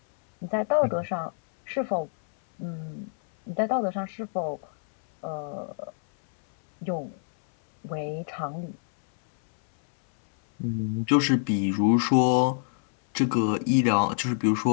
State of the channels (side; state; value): right; silent; 61 dB below the other